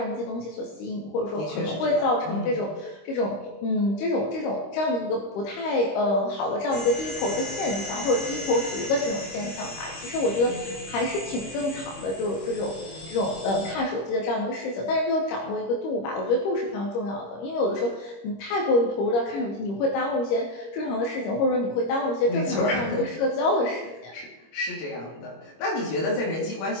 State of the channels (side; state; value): right; late; 25 ms